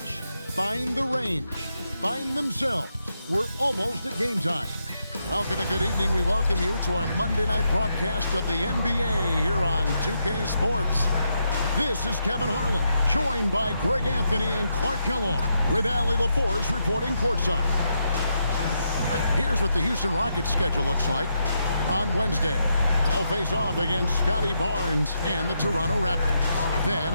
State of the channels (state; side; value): inverted; both; correlation -0.81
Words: Find the range. Find themselves. We're almost at game time. Welcome and good evening. We welcome you to our Monday night broadcast of the NBA here on 2K Sports. This is Kevin Harlan, joined by Greg Anthony and Clark Kellogg, with Allie LaForce reporting courtside. Here's what the Houston Rockets schedule looks like. On Wednesday, they'll face off against Scotty Barnes and the Toronto Raptors. Then